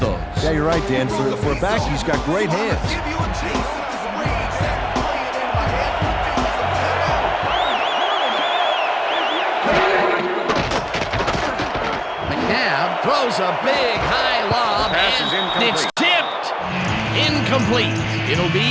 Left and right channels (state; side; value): identical; both; correlation 1.00